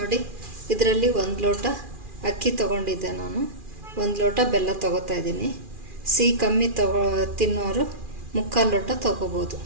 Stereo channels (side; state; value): left; late; 2.4 ms